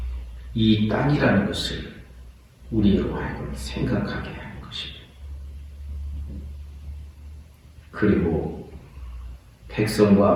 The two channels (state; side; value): identical; both; correlation 1.00